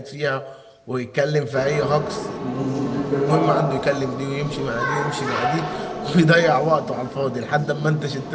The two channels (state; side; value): identical; both; correlation 1.00